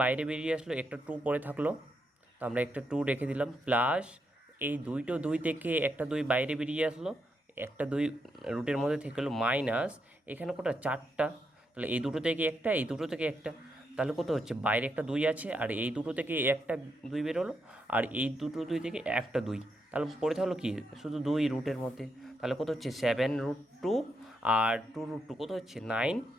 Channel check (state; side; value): normal; both; correlation 0.81